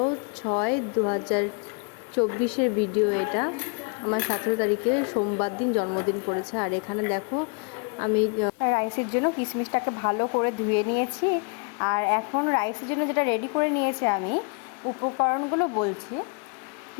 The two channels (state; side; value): quieter; right; 35.8 dB